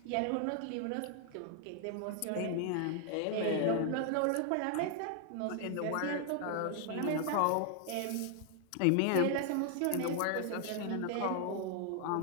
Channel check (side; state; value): both; different; correlation 0.00